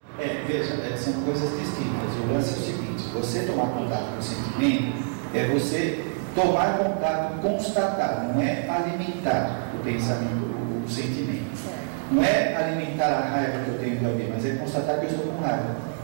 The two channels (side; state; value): left; silent; digital silence